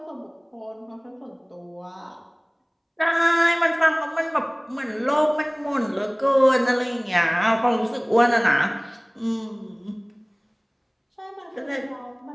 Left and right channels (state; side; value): identical; both; correlation 1.00